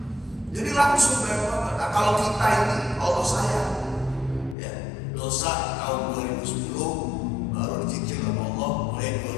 Jadi langsung nah, kalau kita ini Allah sayang, ya, dosa tahun 2010 baru dicicil sama Allah, mulai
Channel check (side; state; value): right; drops out; at 4.5 s